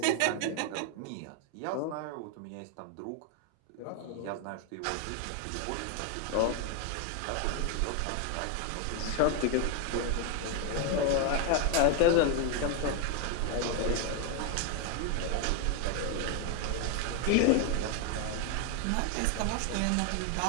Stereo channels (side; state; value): both; different; correlation 0.01